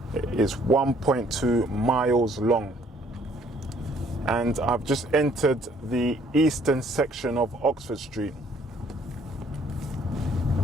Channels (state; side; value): normal; both; correlation 0.62